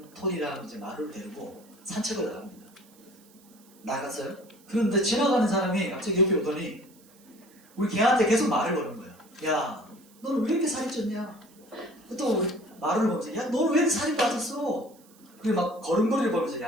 톨이랑 이제 마루를 데리고 산책을 나갑니다. 나갔어요. 그런데 지나가는 사람이 갑자기 옆에 오더니 우리 걔한테 계속 말을 거는 거예요. 야, 너는 왜 이렇게 살이 쪘냐? 또 말을 보면서 야, 너는 왜 이렇게 살이 빠졌어? 그리고 막 걸음걸이를 보면서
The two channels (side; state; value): right; noise; hiss, 27 dB below the sound